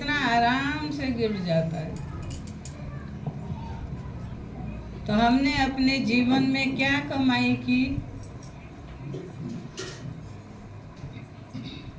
आराम से गिर जाता है। तो हमने अपने जीवन में क्या कमाई की?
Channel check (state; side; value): identical; both; correlation 1.00